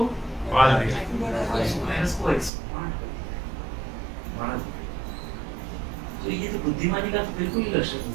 पाल दिया। वायरस को एक्सपांड बढ़ा दिया। तो ये तो बुद्धिमानी का तो बिल्कुल ही लक्षण नहीं,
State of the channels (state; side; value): drops out; left; at 2.5 s